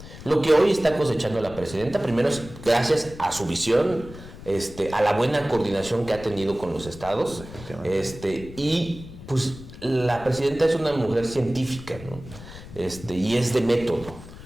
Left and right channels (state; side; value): noise; left; rumble, 15 dB below the sound